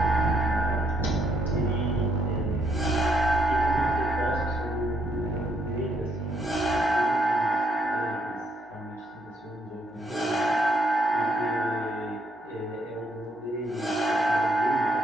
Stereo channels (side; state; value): both; normal; correlation 0.73